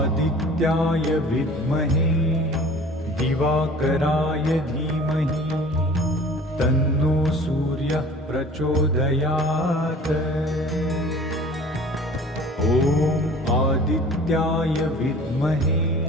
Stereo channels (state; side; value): normal; both; correlation 0.45